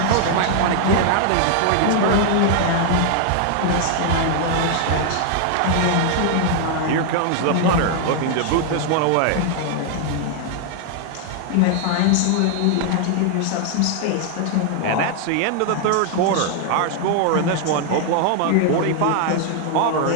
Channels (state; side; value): different; both; correlation 0.00